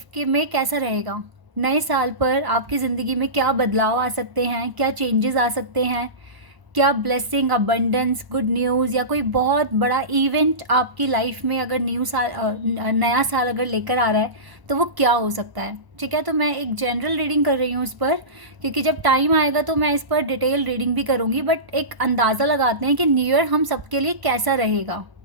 के में कैसा रहेगा। नए साल पर आपकी ज़िंदगी में क्या बदलाव आ सकते हैं, क्या चेंजेस आ सकते हैं, क्या ब्लेसिंग, अबंडेंस, गुड न्यूज़ या कोई बहुत बड़ा इवेंट आपकी लाइफ में अगर नया साल अगर लेकर आ रहा है तो वो क्या हो सकता है। ठीक है, तो मैं एक जनरल रीडिंग कर रही हूँ इस पर, क्योंकि जब टाइम आएगा तो मैं इस पर डिटेल रीडिंग भी करूँगी। बट एक अंदाज़ा लगाते हैं कि न्यू ईयर हम सबके लिए कैसा रहेगा,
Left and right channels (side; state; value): left; late; 1.0 ms